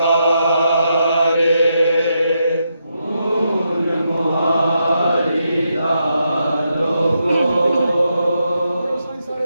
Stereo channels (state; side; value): inverted; both; correlation -0.82